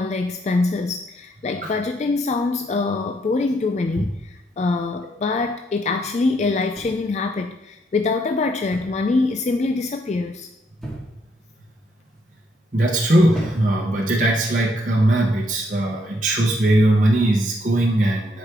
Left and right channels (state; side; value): normal; both; correlation 0.72